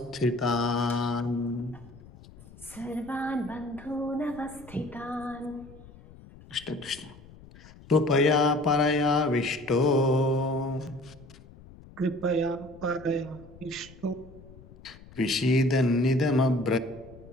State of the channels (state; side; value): noise; left; rumble, 21 dB below the sound